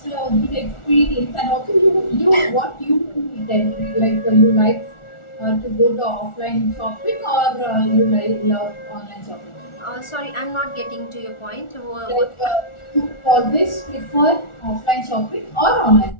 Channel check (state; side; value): late; right; 1.4 ms